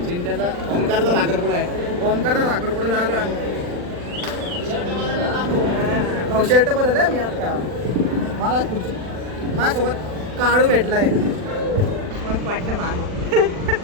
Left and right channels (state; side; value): late; left; 40 ms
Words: चिंट्याचा ओमकारचा साखरपुडा आहे. ओमकारचा साखरपुडा झालो आम्ही. भाऊ शर्ट बदललाय मी आता. मला खुर्ची माझ्यासोबत काळू भेटलाय. मग वाटलं